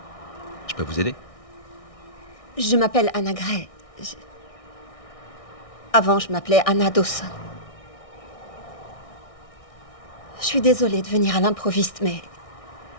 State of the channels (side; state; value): right; late; 1.6 ms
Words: Je peux vous aider? Je m'appelle Anna Gray. Avant, je m'appelais Anna Dawson. Je suis désolée de venir à l'improviste, mais